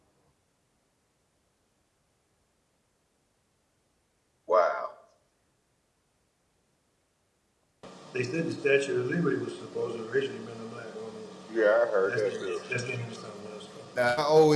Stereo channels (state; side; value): identical; both; correlation 1.00